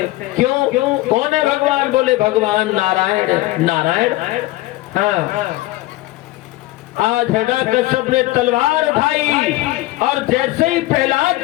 क्यों? कौन है भगवान? बोले भगवान नारायण। नारायण? हाँ। आज हिरण्यकश्यप ने तलवार उठाई और जैसे ही प्रहलाद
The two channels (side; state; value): right; quieter; 18.0 dB